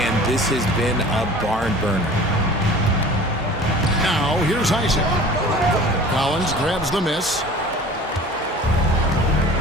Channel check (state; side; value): normal; both; correlation 0.43